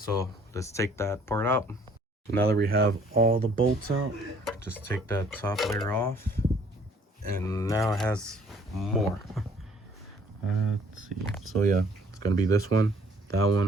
let's take that part out. So now that we have all the bolts out, just take that top layer off, and now it has more. Let's see. So yeah, it's gonna be this one, that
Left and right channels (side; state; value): both; normal; correlation 0.59